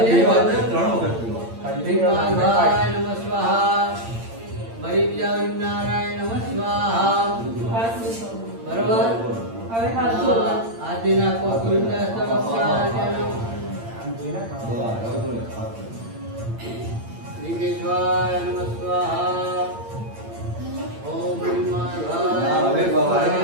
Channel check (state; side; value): late; left; 8.8 ms